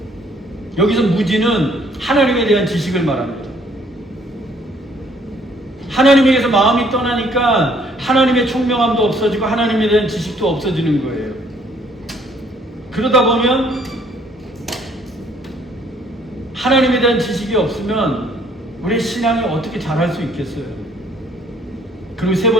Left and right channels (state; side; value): normal; both; correlation 0.63